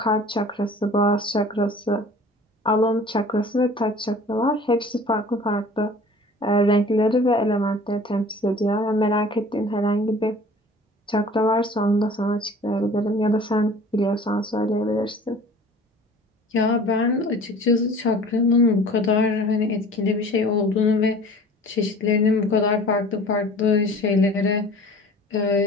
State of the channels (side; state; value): both; normal; correlation 0.45